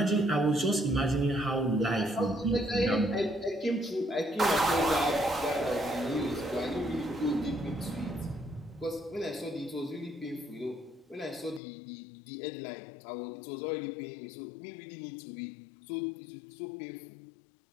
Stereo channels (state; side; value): drops out; right; at 11.6 s